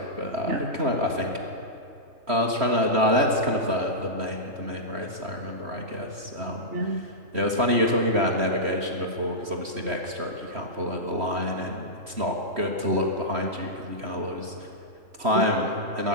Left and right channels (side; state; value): left; late; 3.1 ms